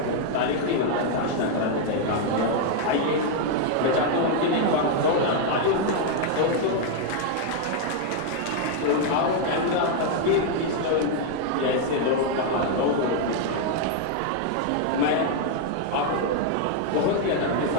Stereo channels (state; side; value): different; both; correlation 0.00